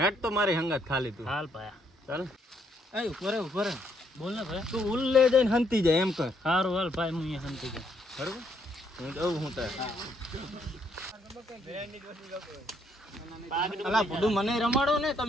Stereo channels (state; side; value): normal; both; correlation 0.72